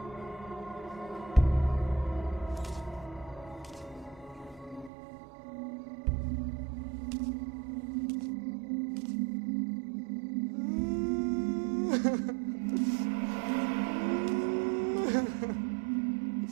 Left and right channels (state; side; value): drops out; left; at 4.9 s